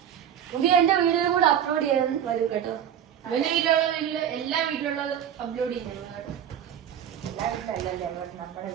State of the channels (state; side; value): quieter; left; 9.5 dB